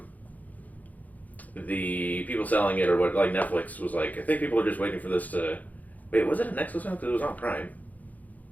the people selling it, or what, like Netflix was like, I think people are just waiting for this to. Wait, was it a Netflix one? Because it was on Prime.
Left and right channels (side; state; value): right; late; 0.078 ms